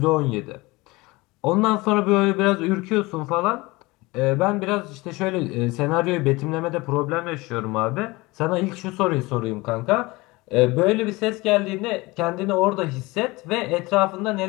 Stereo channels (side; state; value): right; quieter; 22.5 dB